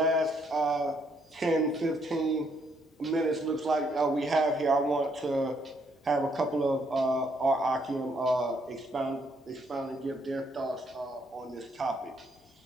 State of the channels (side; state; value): both; normal; correlation 0.71